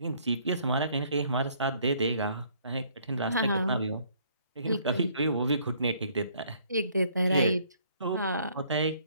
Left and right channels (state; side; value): inverted; both; correlation -0.63